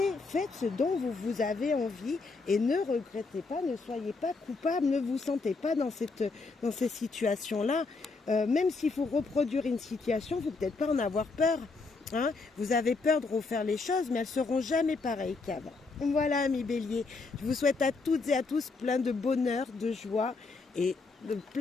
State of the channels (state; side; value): quieter; right; 4.0 dB